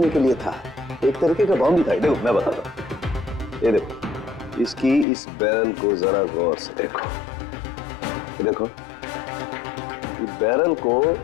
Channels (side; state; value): right; drops out; at 5.1 s